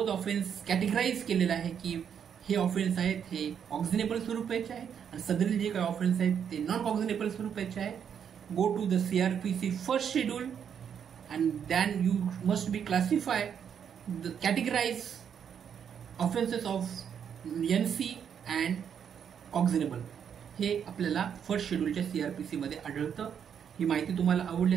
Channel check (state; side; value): quieter; left; 8.0 dB